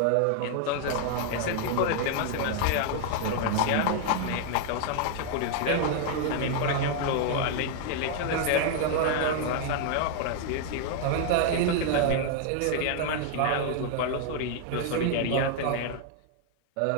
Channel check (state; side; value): different; both; correlation 0.00